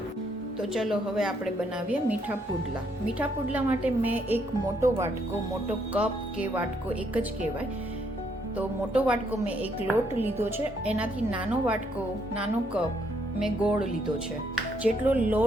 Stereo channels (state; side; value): normal; both; correlation 0.72